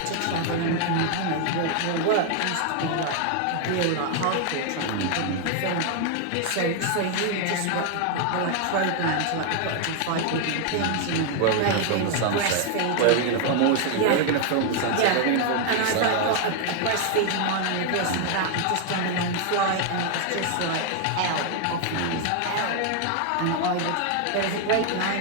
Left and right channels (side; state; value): both; different; correlation 0.00